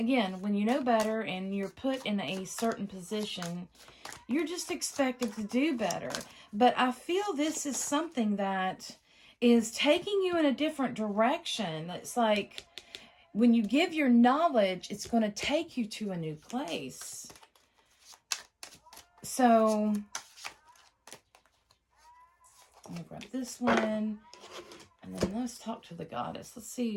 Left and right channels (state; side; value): identical; both; correlation 1.00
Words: when you know better and you're put in a certain position, you're just expected to do better. But I feel this is something that is taking you in a different direction. It's like when you give your knowledge, it's going to take you to a new place. So I'm going to grab this one. And then let's talk to the goddess. Let's